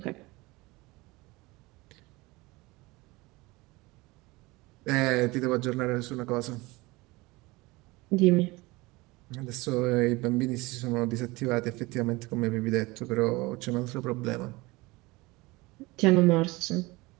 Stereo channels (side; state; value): left; quieter; 22.5 dB